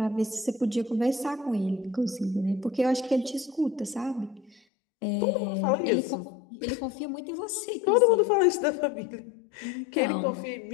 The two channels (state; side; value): drops out; right; at 4.5 s